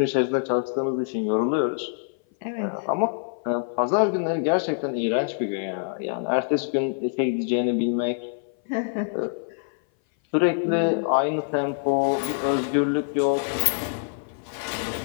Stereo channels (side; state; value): right; silent; 58 dB below the other